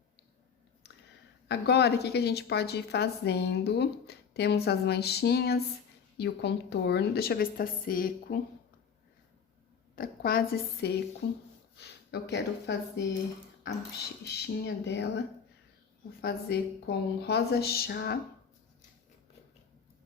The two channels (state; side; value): quieter; right; 6.6 dB